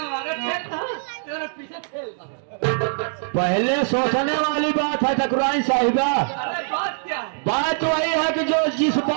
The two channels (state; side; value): silent; left; digital silence